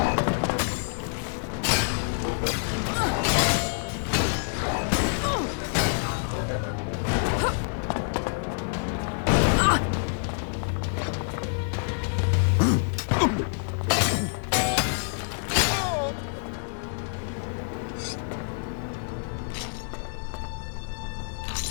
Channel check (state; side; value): silent; right; digital silence